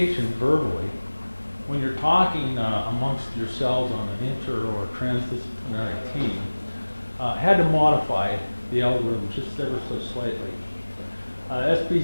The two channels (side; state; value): both; inverted; correlation -1.00